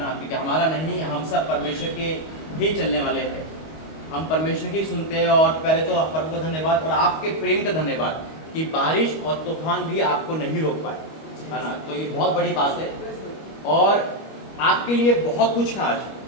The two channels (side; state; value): right; late; 25 ms